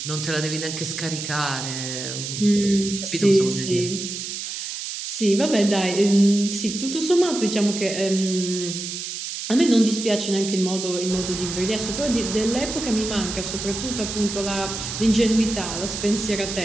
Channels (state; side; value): noise; right; hiss, 6 dB below the sound